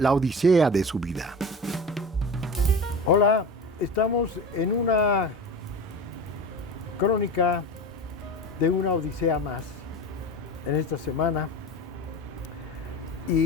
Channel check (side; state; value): both; normal; correlation 0.31